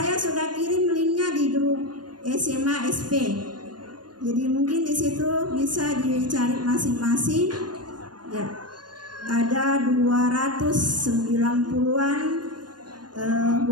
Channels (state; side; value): late; left; 0.70 ms